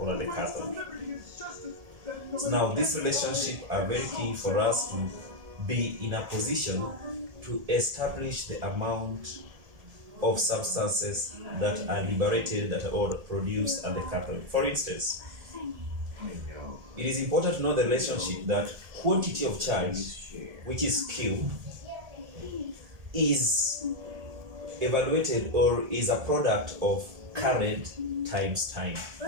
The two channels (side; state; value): left; late; 1.7 ms